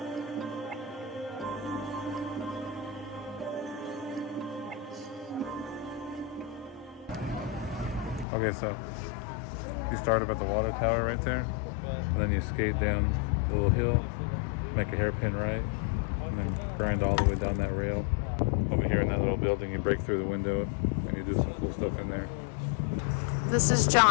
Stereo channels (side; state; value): right; drops out; at 8.2 s